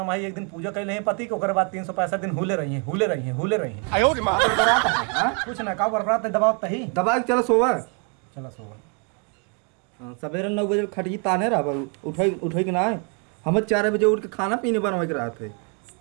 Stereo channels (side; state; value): left; quieter; 37.3 dB